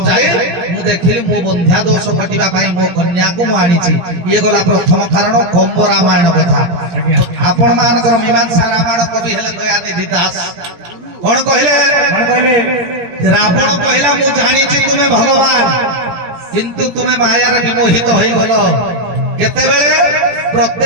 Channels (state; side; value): late; left; 17 ms